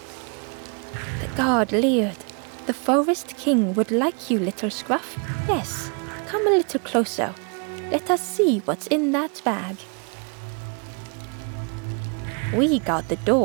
The guard leered. "The Forest King would like you, little scruff. Yes, come a little closer. Let us see what's in that bag." "We guard the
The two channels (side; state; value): left; quieter; 36.4 dB